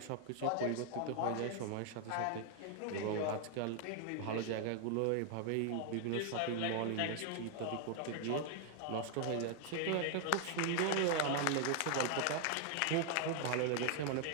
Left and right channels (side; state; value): both; different; correlation 0.00